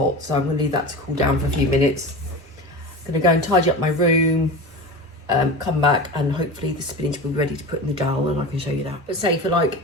so I'm going to leave that to cool down for a few minutes. I'm going to go and tidy up my room, come back, and hopefully the spinach will be ready to put in the Dahl, and I can show you that. But say for like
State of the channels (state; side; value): normal; both; correlation 0.30